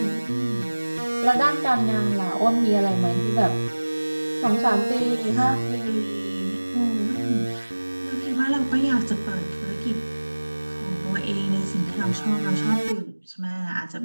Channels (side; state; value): both; inverted; correlation -1.00